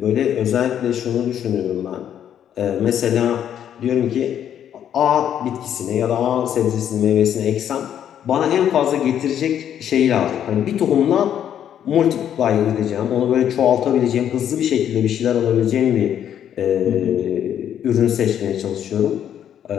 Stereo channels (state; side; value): quieter; right; 9.8 dB